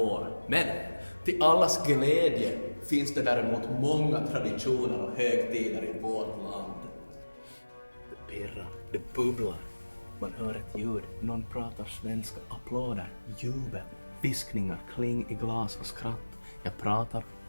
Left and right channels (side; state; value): both; inverted; correlation -1.00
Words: Men till allas glädje finns det däremot många traditioner och högtider i vårt land. Det pirrar, det bubblar. Man hör ett ljud, någon pratar svenska, applåder, jubel, viskningar, kling i glas och skratt. Jag pratar